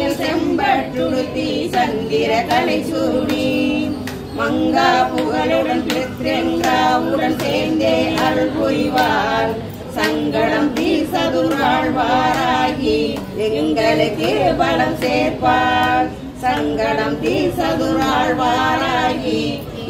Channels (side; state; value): both; identical; correlation 1.00